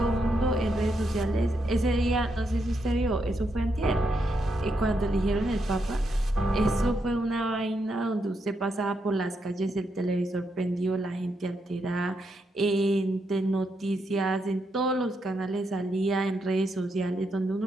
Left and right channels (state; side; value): normal; both; correlation 0.81